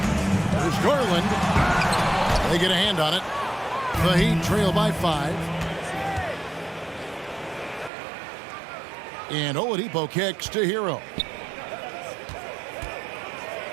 There's Garland. They get a hand on it. The Heat trail by 5. And Oladipo kicks to Hero.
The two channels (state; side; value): drops out; left; at 7.9 s